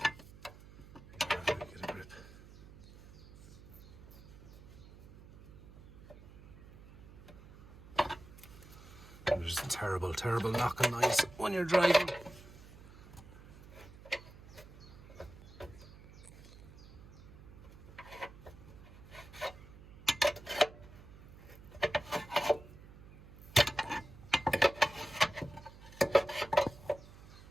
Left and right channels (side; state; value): right; noise; hum, 18 dB below the sound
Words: There's a terrible knocking noise when you're driving.